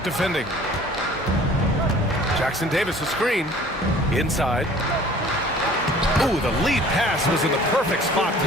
defending. Jackson Davis, a screen. Inside. Ooh, the lead pass was in the perfect spot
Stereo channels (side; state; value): both; normal; correlation 0.50